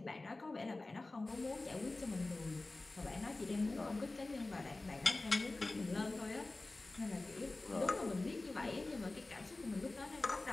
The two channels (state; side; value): quieter; right; 3.1 dB